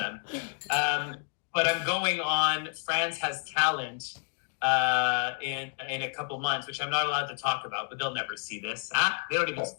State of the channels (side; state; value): right; silent; 58 dB below the other